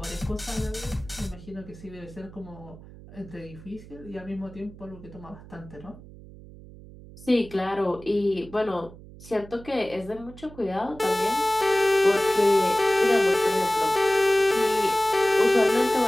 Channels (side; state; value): right; noise; hum, 18 dB below the sound